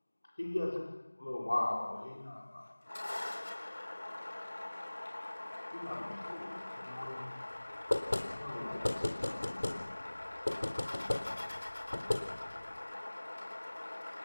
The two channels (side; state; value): both; inverted; correlation -1.00